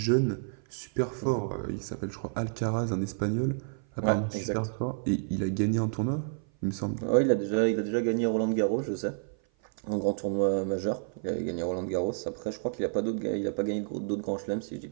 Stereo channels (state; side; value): silent; left; 55 dB below the other